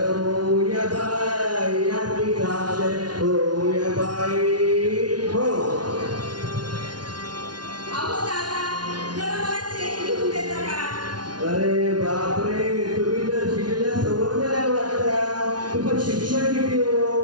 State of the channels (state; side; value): late; left; 0.69 ms